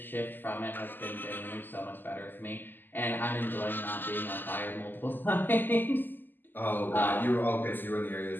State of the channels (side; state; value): right; late; 0.091 ms